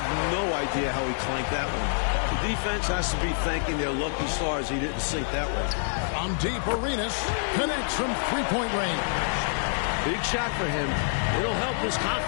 no idea how he clanked that one. The defense has to be thanking their lucky stars he didn't sink that one. From deep, Arenas connects from three-point range. Big shot for him. It'll help his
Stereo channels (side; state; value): right; silent; digital silence